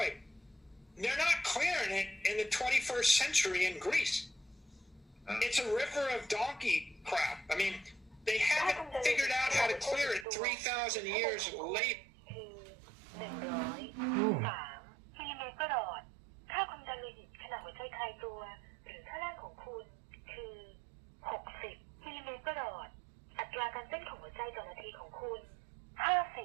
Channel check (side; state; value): left; drops out; at 10.2 s